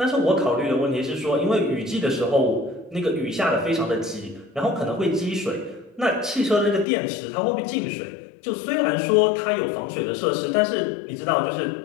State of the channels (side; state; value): right; drops out; at 6.9 s